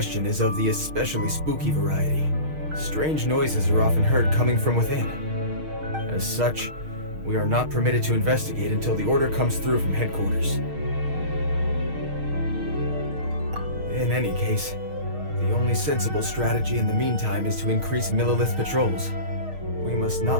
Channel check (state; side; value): late; left; 6.4 ms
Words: is of the especially spooky variety. Strange noises are often heard coming from within. As such, we are not permitted to investigate until the order comes through from headquarters. In any case, the only sensible strategy in the meantime is to increase Millelith patrols. We must